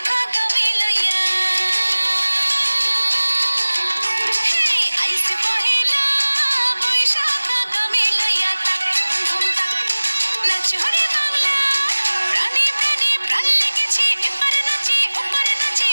আগামী লইয়া হে আইসে পহেলা বৈশাখ আগামী লইয়া তাক ধুম তাক নাচো রে বাংলা প্রাণে প্রাণে প্রাণ লেগেছে এপারে নাচে ওপারে নাচে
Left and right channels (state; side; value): inverted; both; correlation -1.00